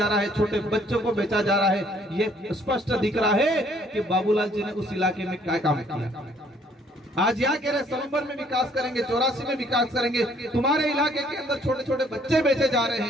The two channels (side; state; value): both; normal; correlation 0.62